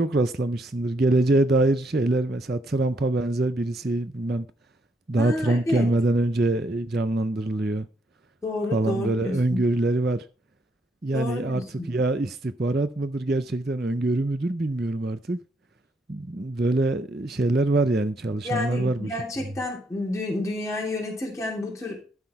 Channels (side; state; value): both; normal; correlation 0.73